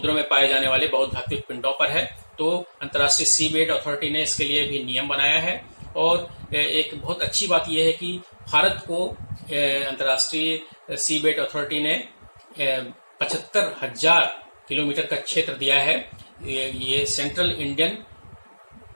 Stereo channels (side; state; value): both; inverted; correlation -1.00